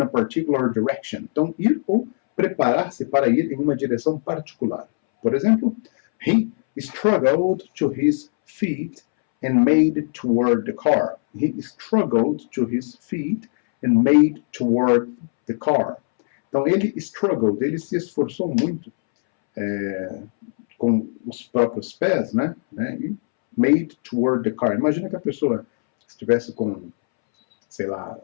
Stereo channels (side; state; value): right; silent; 65 dB below the other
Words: a particular direction. Então, ir ou preparar-se para ir em uma direção particular. Por exemplo, he struggled to his feet and made toward the car. He struggled to his feet and made toward the car. Então, ele struggled, ele se esforçou muito com os próprios pés, né? E made toward the car. Imagina que a pessoa estivesse com, sei lá,